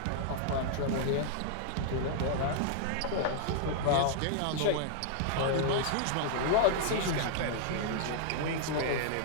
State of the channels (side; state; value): both; different; correlation -0.01